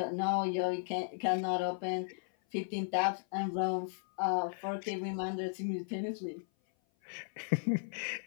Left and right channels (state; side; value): silent; right; 54 dB below the other